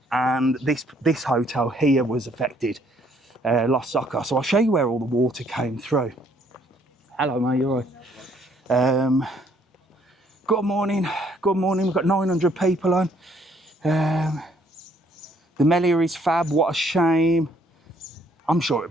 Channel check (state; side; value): normal; both; correlation 0.65